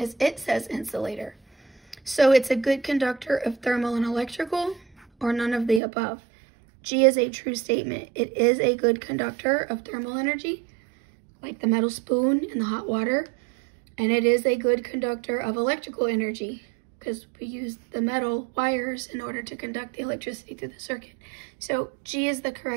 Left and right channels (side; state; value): left; drops out; at 5.8 s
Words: it says insulator. So it's a good conductor of thermal and electrical, or none of the above. G is a true statement. It is a good conductor of thermal energy, like the metal spoon in the hot water, and it is a good conductor of electrical energy because we use the metal wires in order to conduct the electricity through the circuit. So G is the